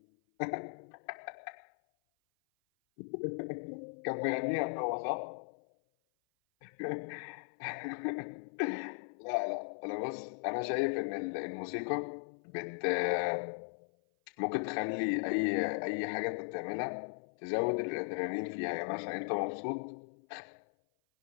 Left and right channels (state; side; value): silent; right; 53 dB below the other